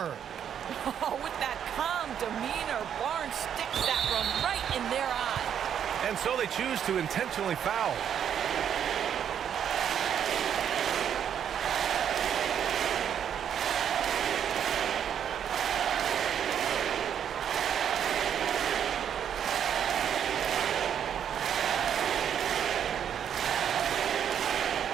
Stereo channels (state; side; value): quieter; left; 8.8 dB